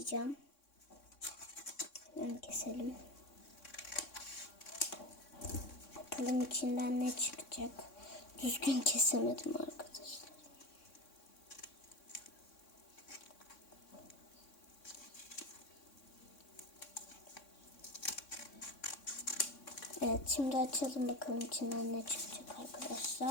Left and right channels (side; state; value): right; late; 3.6 ms